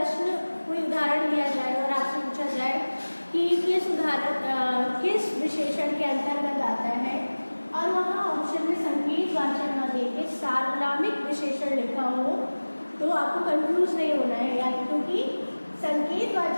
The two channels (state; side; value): inverted; both; correlation -1.00